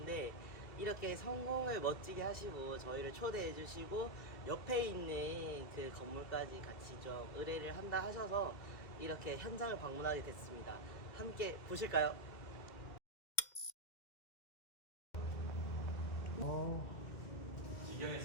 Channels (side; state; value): right; late; 2.1 ms